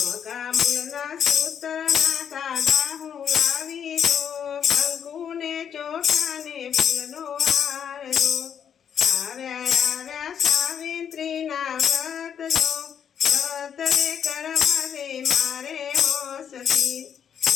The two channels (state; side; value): quieter; right; 8.2 dB